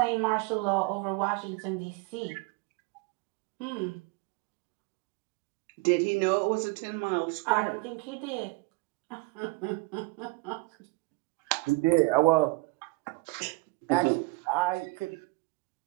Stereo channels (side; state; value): left; quieter; 24.5 dB